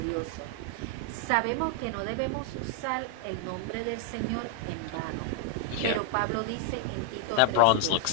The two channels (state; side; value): different; both; correlation 0.00